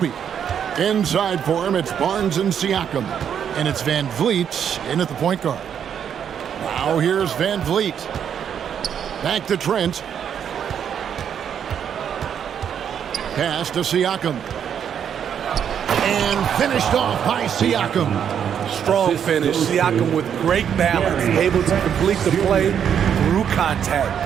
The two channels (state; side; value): quieter; left; 8.4 dB